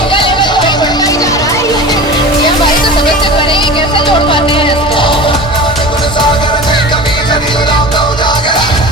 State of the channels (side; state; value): both; normal; correlation 0.34